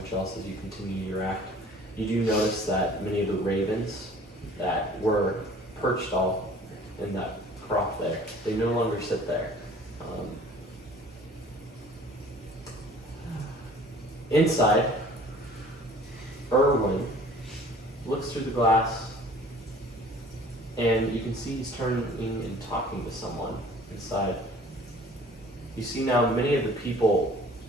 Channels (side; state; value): both; normal; correlation 0.50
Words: else as you continue your act. You do notice that many of the ravens that were perched all in that crop there, they no longer sit there. Inside, Erwin looks through the glass, and you can see he's turning and talking to someone inside. You see now many of the people,